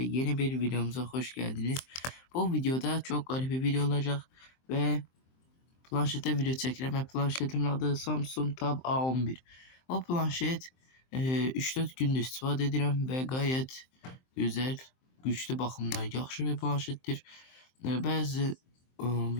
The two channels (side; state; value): right; late; 23 ms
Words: bir videomuza hoş geldiniz. Bu videoda çok garip bir video olacak ve planşete video çekeceğim. Ve planşetimin adı Samsung Tab A11. O planşet 3-4 gündür istifadə edirəm və gayet güzel, güçlü baxımdan yaxşı bir planşetdir. Bəzi